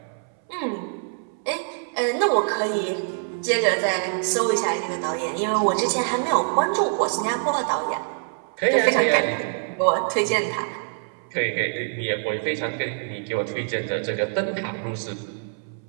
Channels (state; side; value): silent; left; 62 dB below the other